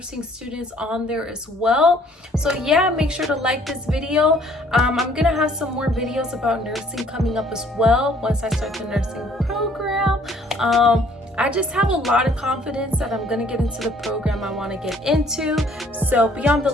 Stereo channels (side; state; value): both; normal; correlation 0.60